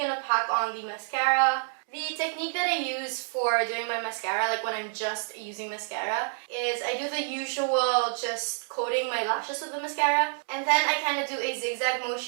to pack on the mascara. The technique that I use for doing my mascara, like when I'm just using mascara, is I do the usual just coating my lashes with the mascara. And then I kind of do a zigzag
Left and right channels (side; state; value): left; silent; 58 dB below the other